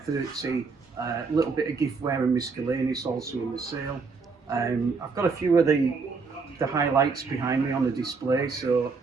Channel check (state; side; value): quieter; left; 4.7 dB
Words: a little bit of giftware and miscellaneous also in the sale. I've got a few of the highlights behind me on the display, so